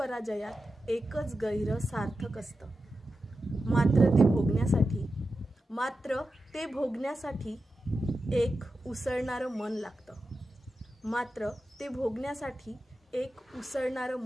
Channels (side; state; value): both; normal; correlation 0.91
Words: एकच गैर सार्थक असतं। मात्र ते भोगण्यासाठी एक उसळणारं मन लागतं। मात्र ते भोगण्यासाठी एक उसळणारं